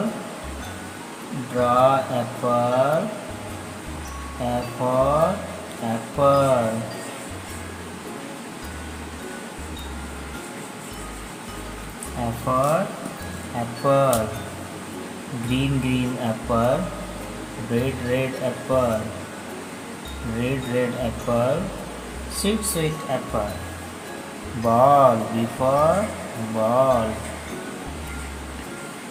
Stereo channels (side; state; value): both; identical; correlation 1.00